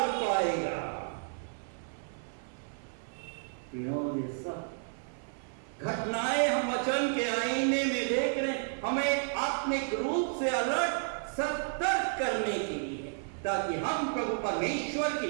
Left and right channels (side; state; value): left; silent; 56 dB below the other